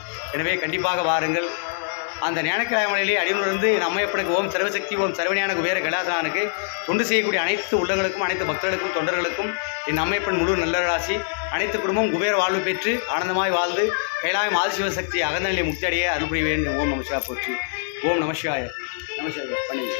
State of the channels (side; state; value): right; silent; 62 dB below the other